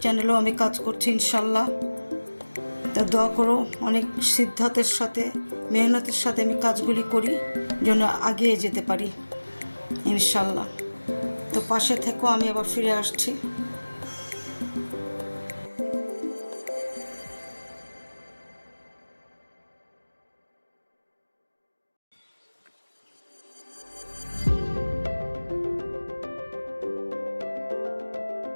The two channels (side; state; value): both; inverted; correlation -1.00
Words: চ্যানেলেও আমি কাজ করছি ইনশাল্লাহ। তো দোয়া করো, অনেক সিদ্ধান্তের সাথে মেহনতের সাথে আমি কাজগুলি করি যেন এগিয়ে যেতে পারি ইনশাল্লাহ। তো পাশে থেকো, আমি আবার ফিরে আসছি।